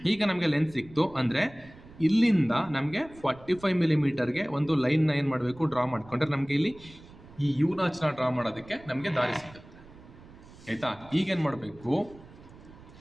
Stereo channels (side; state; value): right; noise; rumble, 21 dB below the sound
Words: ಈಗ ನಮಗೆ ಲೆಂತ್ ಸಿಕ್ತು. ಅಂದರೆ ಇಲ್ಲಿಂದ ನಮಗೆ 45 ಮಿಲಿಮೀಟರ್ಗೆ ಒಂದು ಲೈನ್ನ ಏನು ಮಾಡಬೇಕು, ಡ್ರಾ ಮಾಡಿಕೊಂಡ್ರೆ ನಮಗೆ ಇಲ್ಲಿ ಈ ಯು ನಾಚ್ನ ಡ್ರಾ ಮಾಡೋದಕ್ಕೆ ನಮಗೆ ದಾರಿ ಸಿಗುತ್ತೆ. ಆಯಿತಾ? ಈಗೇನು ಮಾಡಬೇಕು,